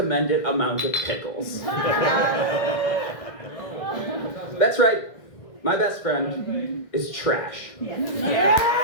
amount of pickles. That's right, my best friend is trash.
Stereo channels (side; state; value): right; late; 1.6 ms